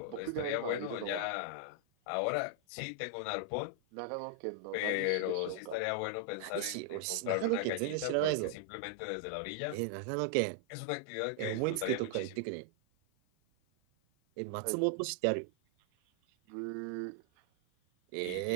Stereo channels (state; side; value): different; both; correlation 0.00